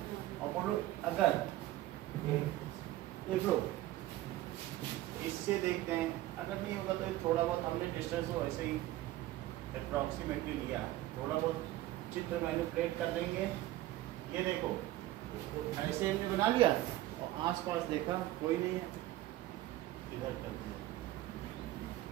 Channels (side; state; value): left; quieter; 15.6 dB